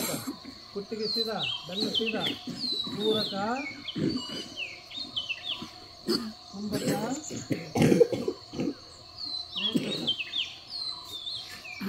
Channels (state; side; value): identical; both; correlation 1.00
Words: ಕುತ್ತಿಗೆ ಸೀದಾ, ಬೆನ್ನು ಸೀದಾ, ಪೂರಕ, ಕುಂಭಕ, ರೇಚಕ,